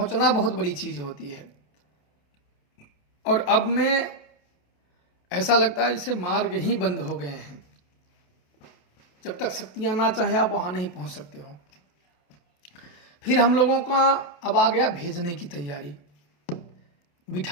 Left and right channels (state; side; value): late; right; 28 ms